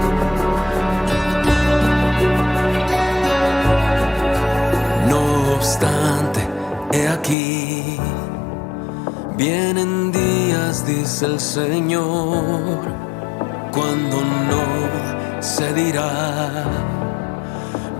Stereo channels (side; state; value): right; drops out; at 7.4 s